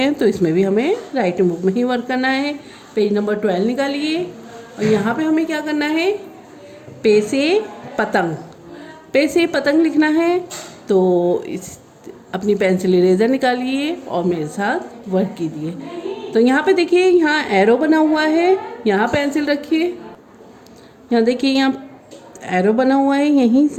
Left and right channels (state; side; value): identical; both; correlation 1.00